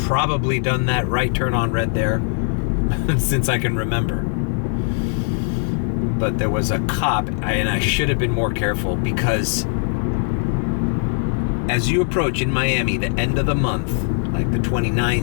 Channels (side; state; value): right; silent; 57 dB below the other